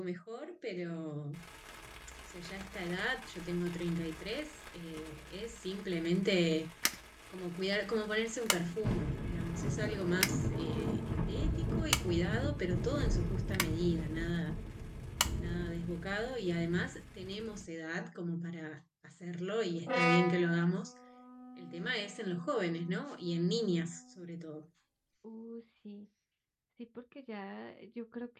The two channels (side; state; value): both; identical; correlation 1.00